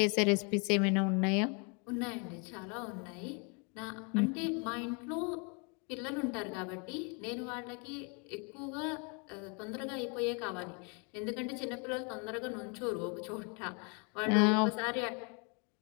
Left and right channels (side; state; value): right; quieter; 34.9 dB